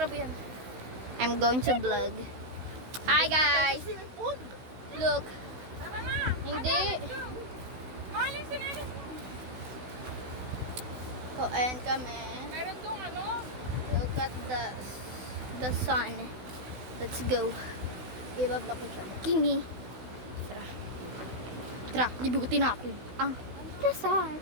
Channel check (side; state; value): left; late; 16 ms